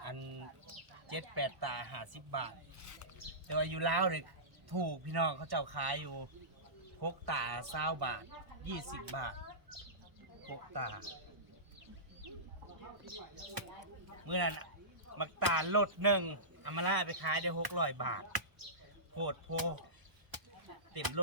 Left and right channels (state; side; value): late; left; 1.0 ms